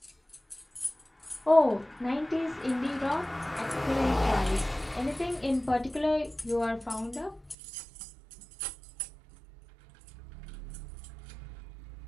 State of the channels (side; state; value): left; drops out; at 7.6 s